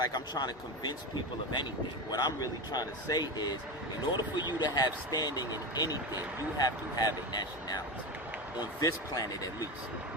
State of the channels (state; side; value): normal; both; correlation 0.20